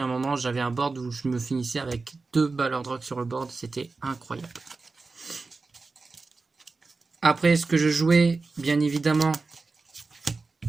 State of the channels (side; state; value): left; quieter; 3.9 dB